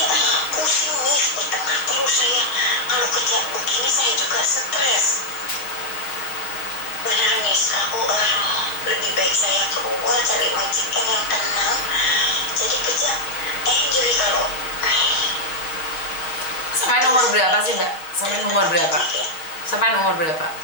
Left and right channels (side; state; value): right; late; 6.4 ms